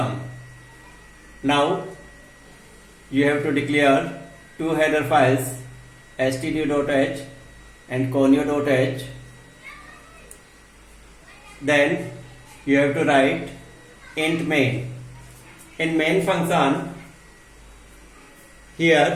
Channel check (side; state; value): both; identical; correlation 1.00